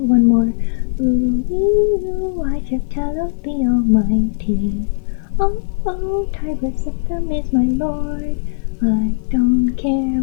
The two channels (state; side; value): silent; right; digital silence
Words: more. Ooh, ooh, I serve Talos the Almighty. Oh, oh, Tiber Septim is my lord. I don't care